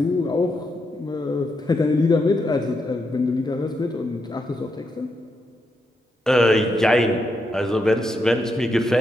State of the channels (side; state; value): both; normal; correlation 0.82